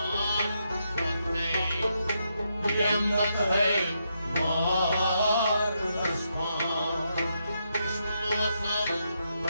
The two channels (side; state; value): both; inverted; correlation -0.81